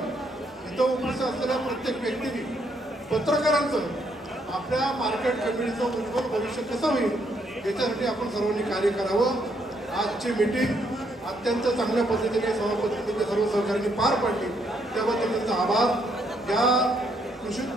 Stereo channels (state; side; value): normal; both; correlation 0.73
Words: इथं उपस्थित असलेल्या प्रत्येक व्यक्तीने, पत्रकारांचं आपल्या मार्केट कमिटीचं उज्ज्वल भविष्य कसं होईल याच्यासाठी आपण सर्वांनी कार्य करावं. आजची मीटिंग अत्यंत चांगल्या पद्धतीने सभापतींनी सर्व सहकार्यांनी पार पाडली, त्याबद्दल त्यांचा आभार. या कृषी